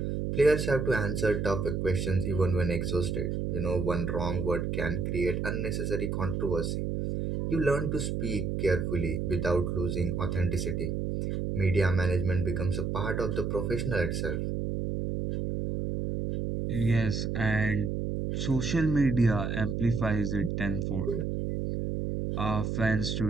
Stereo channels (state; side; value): noise; right; hum, 1 dB below the sound